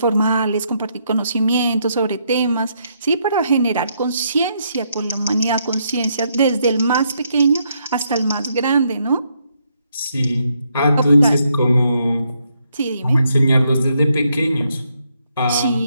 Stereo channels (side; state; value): both; inverted; correlation -0.76